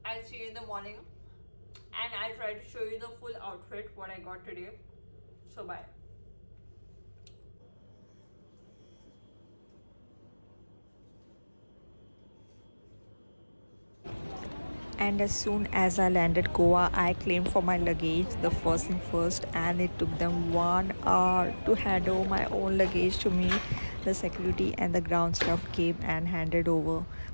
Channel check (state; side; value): inverted; both; correlation -1.00